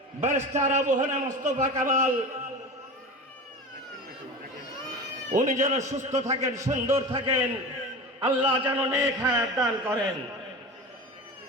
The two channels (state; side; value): normal; both; correlation 0.30